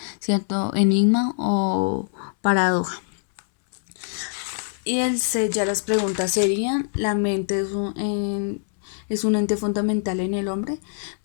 cierto enigma o paradoja. Y el C, ya las preguntas serían, ¿la mente es un ente fundamental en el hombre?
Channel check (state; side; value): silent; right; 62 dB below the other